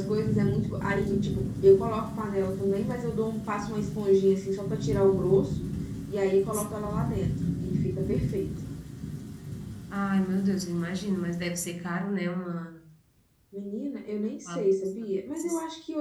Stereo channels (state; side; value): identical; both; correlation 1.00